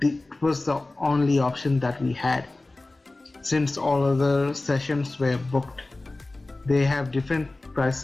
it was the only option that we had. Since all other sessions were booked, they have different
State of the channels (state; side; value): quieter; right; 3.0 dB